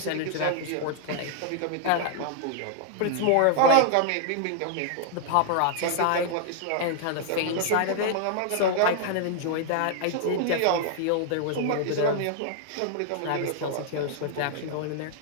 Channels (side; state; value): both; different; correlation -0.01